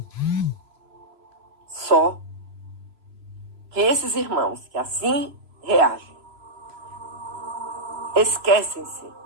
Só que esses irmãos que assim reagem, esquecem-se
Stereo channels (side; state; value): left; late; 3.0 ms